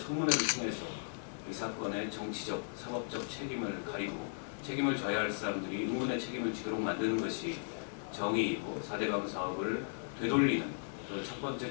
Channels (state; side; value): silent; right; digital silence